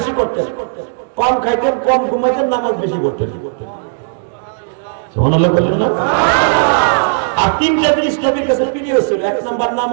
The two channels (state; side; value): silent; left; digital silence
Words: করতেন, কম খাইতেন, কম ঘুমাইতেন, নামাজ বেশি করতেন। সুবহানাল্লাহ বলেন না? আর 3টা জিনিস নবীর কাছে প্রিয় ছিল। 1 নাম্বার